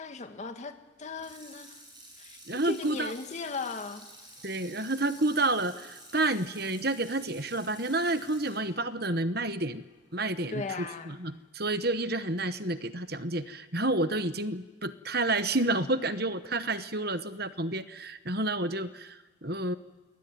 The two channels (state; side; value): normal; both; correlation 0.25